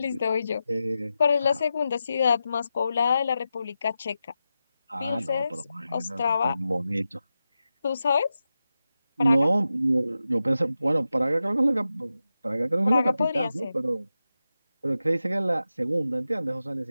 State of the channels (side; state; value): both; inverted; correlation -0.91